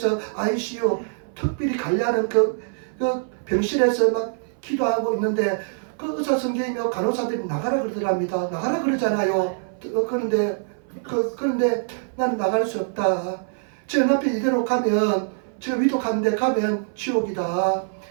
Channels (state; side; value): silent; left; 58 dB below the other